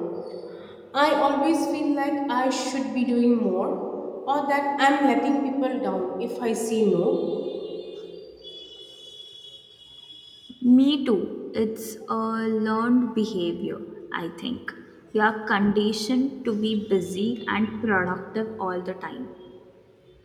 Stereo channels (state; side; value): identical; both; correlation 1.00